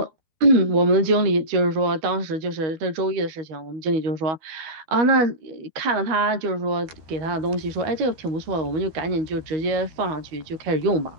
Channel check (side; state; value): left; late; 13 ms